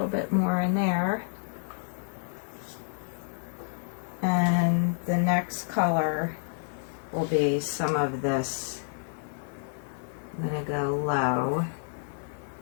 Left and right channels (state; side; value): silent; right; 56 dB below the other